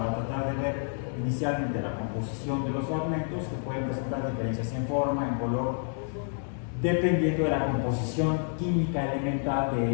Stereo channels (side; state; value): right; silent; 55 dB below the other